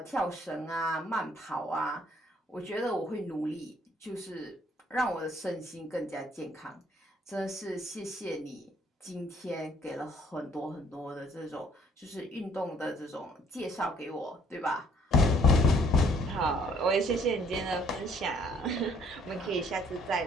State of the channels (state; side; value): normal; both; correlation 0.63